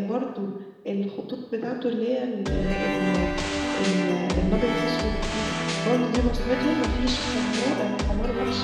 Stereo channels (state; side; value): identical; both; correlation 1.00